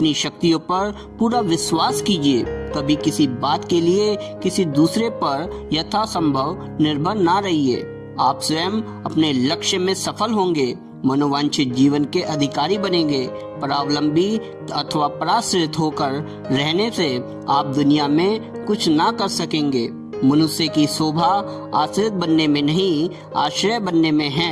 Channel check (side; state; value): both; identical; correlation 1.00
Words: शक्तियों पर पूरा विश्वास कीजिए। कभी किसी बात के लिए किसी दूसरे पर यथासंभव निर्भर ना रहिए। आप स्वयं अपने लक्ष्य में सफल होंगे, मनोवांछित जीवन के अधिकारी बनेंगे। परावलंबी अथवा पराश्रित होकर रहने से आप दुनिया में कुछ ना कर सकेंगे। मनुष्य की शोभा आश्रित बनने में नहीं, आश्रय बनने में